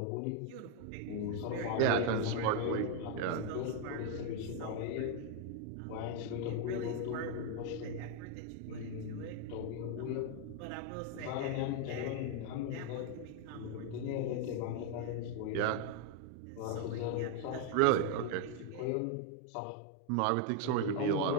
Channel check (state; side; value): different; both; correlation 0.01